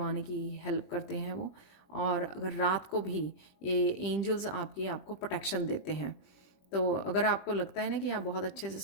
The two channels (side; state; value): right; late; 20 ms